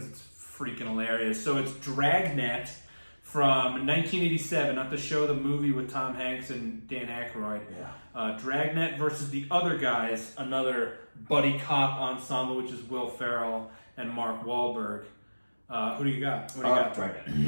it's freaking hilarious. So it's Dragnet from 1987, not the show, the movie with Tom Hanks and Dan Aykroyd. Yeah. Dragnet versus The Other Guys, another buddy cop ensemble, which is Will Ferrell and Mark Wahlberg. Who do you got? What do you got?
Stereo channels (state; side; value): inverted; both; correlation -1.00